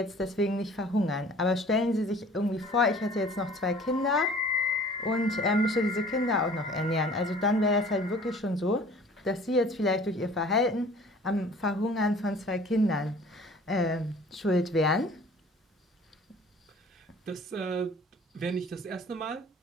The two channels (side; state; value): both; normal; correlation 0.49